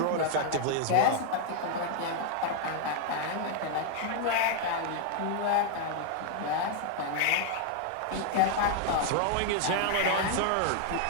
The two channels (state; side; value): different; both; correlation 0.00